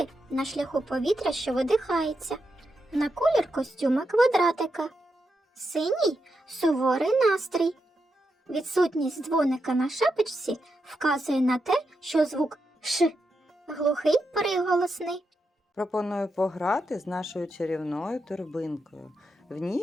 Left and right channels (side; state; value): both; normal; correlation 0.85